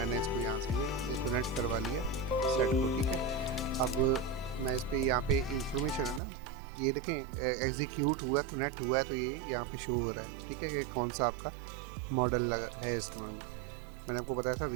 इसको यहाँ से ये कनेक्ट करवा लिया सेट को, ठीक है। अब मैं इस पर यहाँ पे इंफॉर्मेशन है ना, ये देखें एग्जीक्यूट हुआ, कनेक्ट हुआ है, तो ये यहाँ पे शो हो रहा है, ठीक है, कि कौन सा आपका मॉडल लगा है इसमें। मैंने आपको बताया था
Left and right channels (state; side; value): drops out; left; at 6.2 s